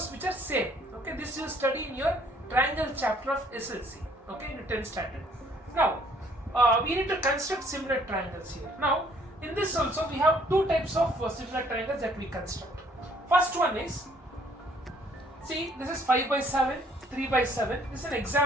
which are same. Okay, this you study in your triangle chapter of SSLC. Okay, in the 10th standard. Now we need to construct similar triangles here. Now in this also we have two types of similar triangles that we construct. First one is, see, this is 5 by 7, 3 by 7. This is an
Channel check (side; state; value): both; normal; correlation 0.61